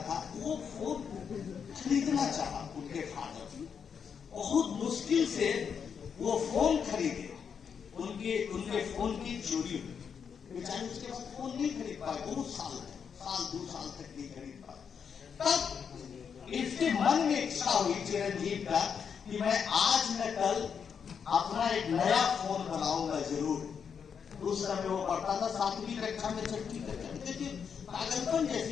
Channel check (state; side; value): quieter; right; 6.9 dB